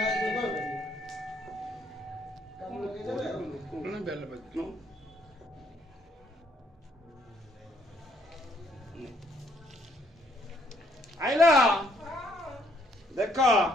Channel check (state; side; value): normal; both; correlation 0.68